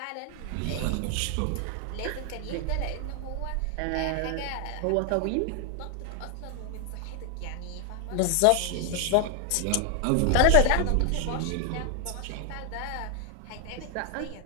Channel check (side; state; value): both; different; correlation 0.00